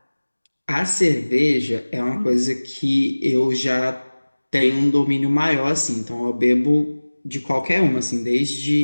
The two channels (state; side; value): inverted; both; correlation -1.00